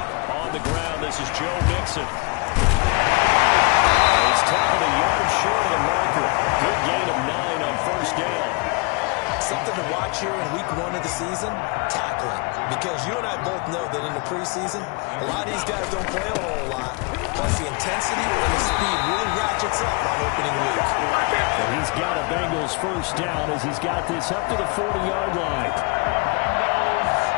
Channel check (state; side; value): quieter; right; 31.0 dB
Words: On the ground, this is Joe Mixon. He's tackled a yard short of the marker. Good gain of 9 on first down. Something to watch here in week 1 of the season, tackling. Because you and I both know that in the preseason, a lot of these guys don't play a whole lot. Plus the intensity and the speed really ratchets up on opening week. And he's got a Bengals first down as he's got this up to the 40-yard line.